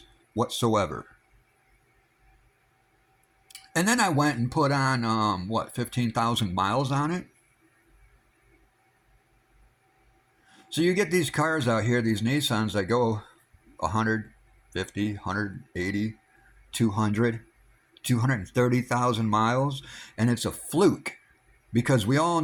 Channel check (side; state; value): both; identical; correlation 1.00